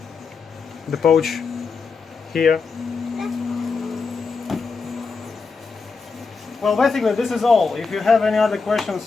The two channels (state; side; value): quieter; right; 4.8 dB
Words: the pouch here. Well, basically this is all. If you have any other